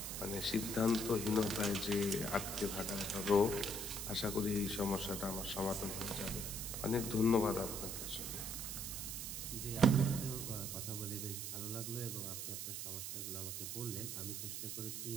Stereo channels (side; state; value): right; noise; hiss, 4 dB below the sound